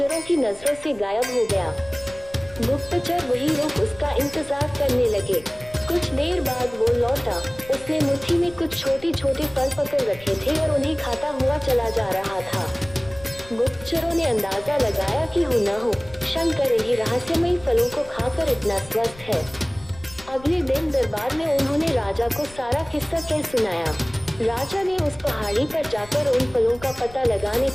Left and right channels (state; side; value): noise; left; rumble, 21 dB below the sound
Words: की नजरों से गायब हो गया। गुप्तचर वहीं रुक उसका इंतजार करने लगे। कुछ देर बाद वो लौटा। उसने मुट्ठी में कुछ छोटे छोटे फल पकड़ रखे थे और उन्हें खाता हुआ चला जा रहा था। गुप्तचरों ने अंदाजा लगाया कि हो न हो शंकर इन्हीं रहस्यमयी फलों को खाकर इतना स्वस्थ है। अगले दिन दरबार में उन्होंने राजा को सारा किस्सा कह सुनाया। राजा ने उस पहाड़ी पर जाकर उन फलों का पता लगाने